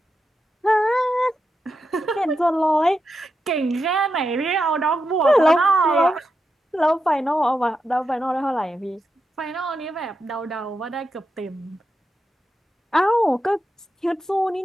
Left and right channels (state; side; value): normal; both; correlation 0.87